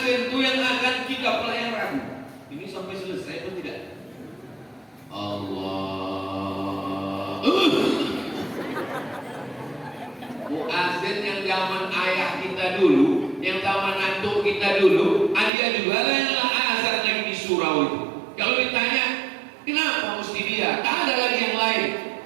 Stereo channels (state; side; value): drops out; left; at 15.5 s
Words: itu yang azan kita pelayan ragu. Ini sampai selesai atau tidak? Allah. Muazin yang zaman ayah kita dulu, yang zaman antuk kita dulu, dia juga lah yang azan lagi di surau itu. Kalau ditanya, kenapa mesti dia? Tak ada lagi yang lain.